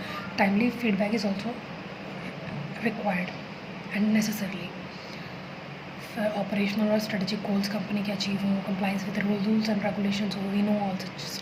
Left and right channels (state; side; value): identical; both; correlation 1.00